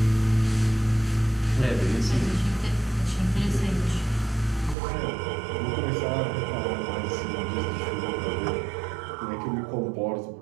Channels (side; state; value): left; drops out; at 4.8 s